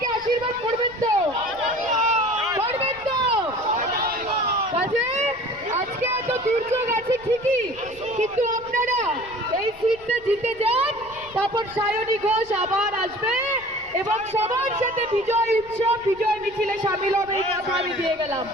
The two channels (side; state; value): left; noise; rumble, 23 dB below the sound